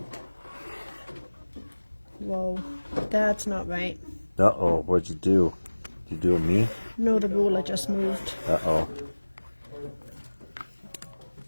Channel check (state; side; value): inverted; both; correlation -1.00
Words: Whoa, that's not right. Uh-oh, what'd you do? Did you do a me? No, the ruler just moved. Uh-oh.